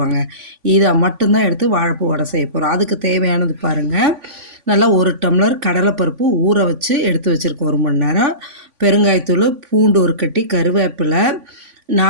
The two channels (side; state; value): left; late; 3.5 ms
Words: இதை மட்டும்தான் எடுத்து வாழைப்பூ வடை செய்ய போகிறோம். அதுக்கு தேவையானது பாருங்கள், நல்லா 1 டம்ளர் கடலைப்பருப்பு ஊற வச்சு எடுத்து வச்சுருக்கோம் 1 மணி நேரம். பெருங்காயத்தூள், பூண்டு 1 கட்டி, கருவேப்பிலை,